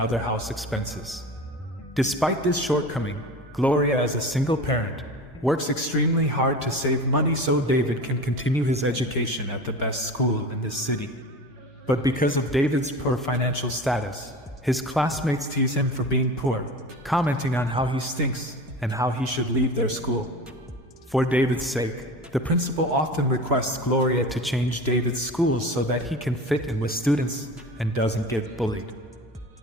house expenses. Despite this shortcoming, Gloria, as a single parent, works extremely hard to save money so David can continue his education at the best school in this city. But because of David's poor financial status, his classmates tease him for being poor, commenting on how he stinks and how he should leave their school. For David's sake, the principal often requests Gloria to change David's school so that he can fit in with students and doesn't get bullied.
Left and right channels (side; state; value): both; normal; correlation 0.34